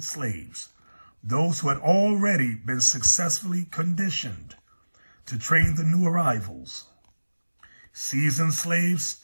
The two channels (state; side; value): inverted; both; correlation -1.00